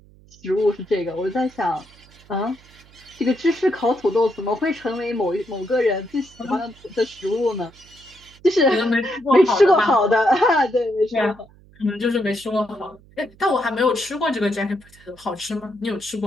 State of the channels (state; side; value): noise; right; hum, 26 dB below the sound